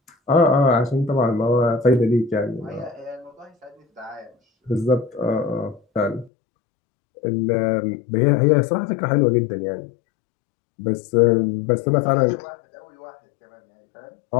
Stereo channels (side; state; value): right; drops out; at 6.3 s